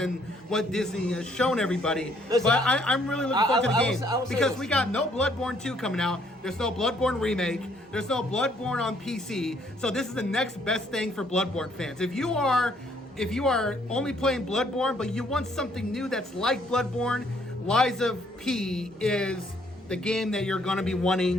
what Disney has shown everybody. Listen, but I'm really looking forward to the game I will say because this. we got no Bloodborne 2 coming out. There's no Bloodborne remake. There's no Bloodborne on PC. So this is the next best thing for Bloodborne fans. If you are only playing Bloodborne, but you want something new that's like Bloodborne, Liza P is the game that you're going to be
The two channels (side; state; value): both; normal; correlation 0.66